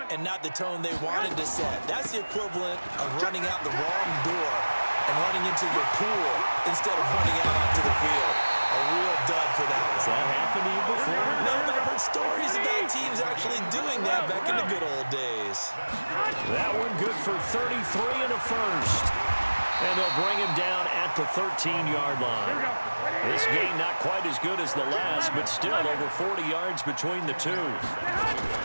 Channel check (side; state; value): both; inverted; correlation -1.00